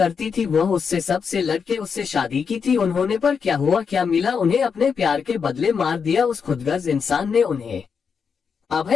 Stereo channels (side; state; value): right; quieter; 6.1 dB